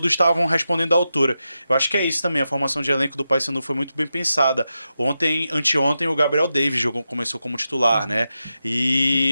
estavam respondendo à altura. Eu acho que é isso também, a formação de elenco do Paysandu foi muito bem pensada. Anteontem, o Gabriel Davis começou como titular, né?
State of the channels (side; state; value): both; inverted; correlation -0.89